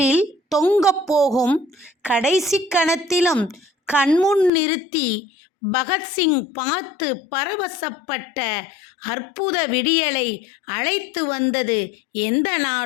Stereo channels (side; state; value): right; drops out; at 4.5 s